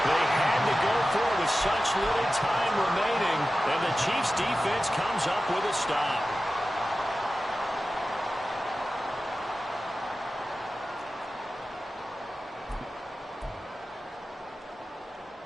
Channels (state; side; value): normal; both; correlation 0.94